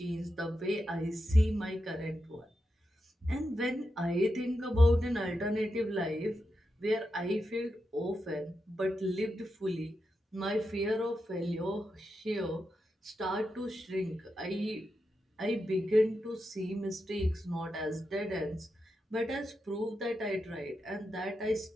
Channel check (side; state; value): both; normal; correlation 0.87